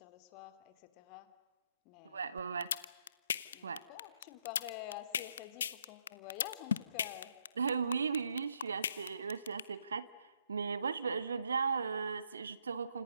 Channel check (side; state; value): both; inverted; correlation -0.74